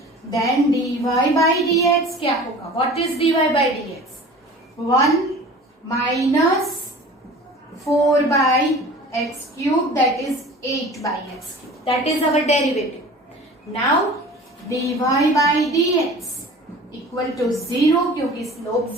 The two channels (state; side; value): normal; both; correlation 0.42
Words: Then dy by dx क्या होगा? What is dy by dx? 1 minus 4 by x cube, that is 8 by x cube. That is our derivative. Now dy by dx equal to 0 क्योंकि slope